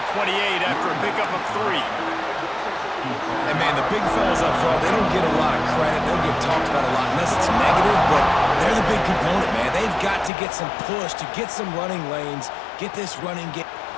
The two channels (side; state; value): right; drops out; at 10.3 s